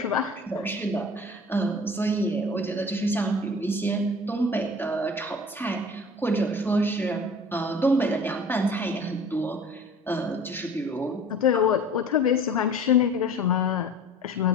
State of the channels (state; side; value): normal; both; correlation 0.44